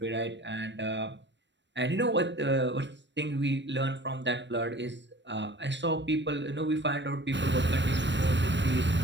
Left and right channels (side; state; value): left; late; 0.53 ms